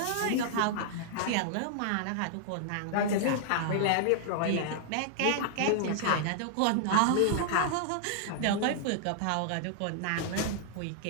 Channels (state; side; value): different; both; correlation -0.01